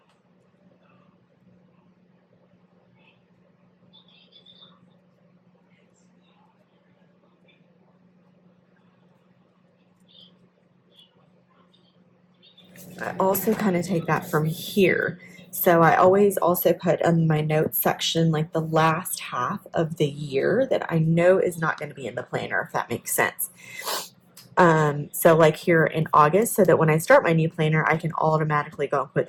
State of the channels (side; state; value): both; identical; correlation 1.00